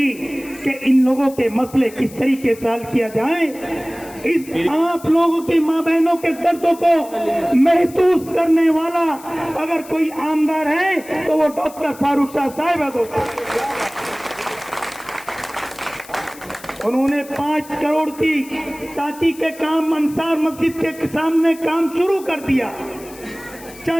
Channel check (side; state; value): left; noise; hiss, 19 dB below the sound